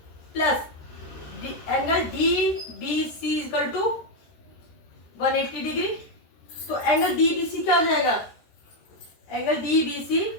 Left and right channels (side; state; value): right; late; 13 ms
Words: plus angle DBC equal to 180 degree. तो एंगल DBC क्या हो जाएगा? एंगल DBC